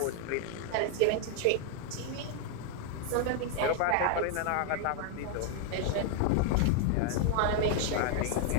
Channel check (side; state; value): both; different; correlation 0.00